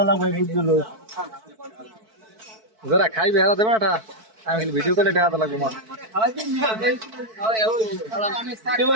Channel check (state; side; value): late; left; 4.6 ms